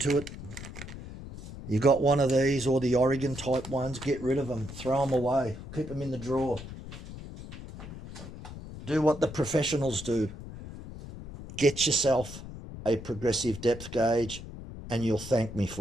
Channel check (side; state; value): left; noise; rumble, 12 dB below the sound